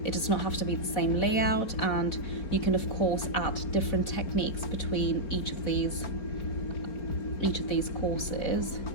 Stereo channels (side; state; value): right; late; 4.1 ms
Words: It does not have to be the same layout, and you can of course add different techniques between each of these each of these courses.